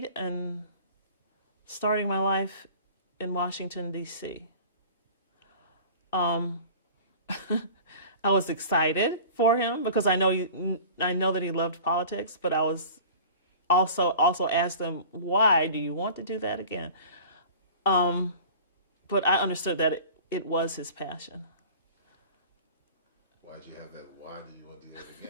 and starting my life in Washington, D.C. I was excited for him because I know that he loved politics, but I was also asked him, "Why do you want to do that again?" But I understood that it was his passion. Why'd you have that? Why do you want to do that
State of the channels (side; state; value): both; inverted; correlation -0.42